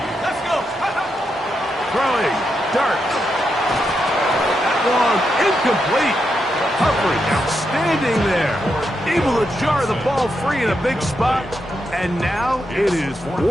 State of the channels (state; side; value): normal; both; correlation 0.84